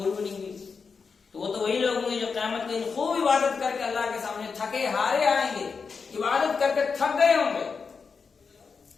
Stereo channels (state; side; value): quieter; right; 5.3 dB